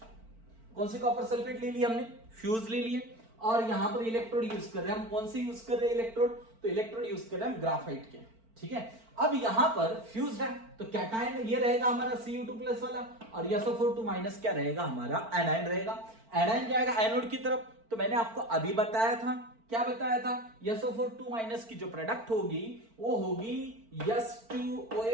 कौन सी कॉपर सल्फेट ले लिया हमने, फ्यूज ले लिए, और यहां पर इलेक्ट्रोड यूज कर रहे हैं हम, कौन से यूज कर रहे हैं इलेक्ट्रोड, तो इलेक्ट्रोड यूज कर रहे हैं हम ग्राफाइट के। ठीक है, अब यहां पर फ्यूज है तो कैटायन ये रहेगा हमारा Cu2+ वाला और SO4 क्या रहेगा हमारा, एनायन रहेगा। एनायन जाएगा एनोड की तरफ, तो मैंने आपको अभी बताया था, क्या बताया था, SO4 की जो प्रोडक्ट होगी वो होगी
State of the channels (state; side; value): late; left; 4.4 ms